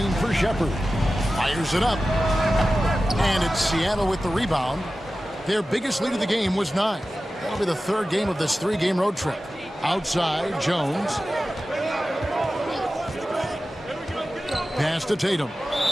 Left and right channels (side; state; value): both; normal; correlation 0.94